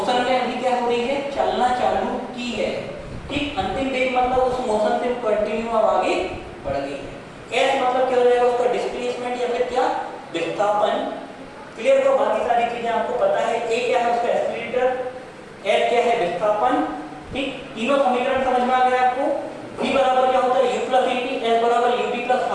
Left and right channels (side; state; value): both; identical; correlation 1.00